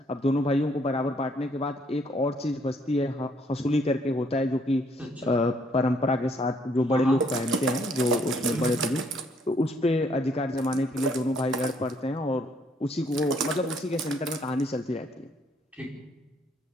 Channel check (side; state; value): both; normal; correlation 0.67